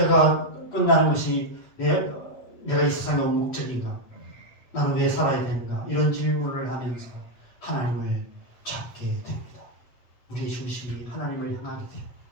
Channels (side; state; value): right; late; 8.2 ms